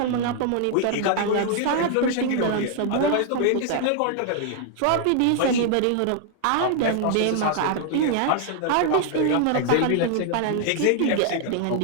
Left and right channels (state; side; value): different; both; correlation 0.00